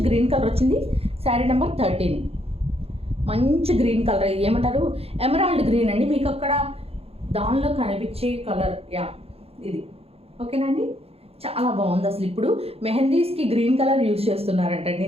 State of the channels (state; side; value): late; left; 0.29 ms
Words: గ్రీన్ కలర్ వచ్చింది. శారీ నెంబర్ 13 మంచి గ్రీన్ కలర్, ఏమంటారు ఎమరాల్డ్ గ్రీన్ అండి, మీకు అక్కడ దానిలో కనిపించే కలర్ యా ఇది. ఓకేనండి, చాలా బాగుంది అసలు. ఇప్పుడు మెహందీస్కి గ్రీన్ కలర్ యూజ్ చేస్తున్నారంటండి,